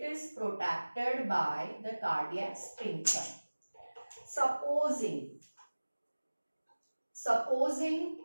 is protected by the cardiac sphincter. Supposing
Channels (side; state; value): both; inverted; correlation -1.00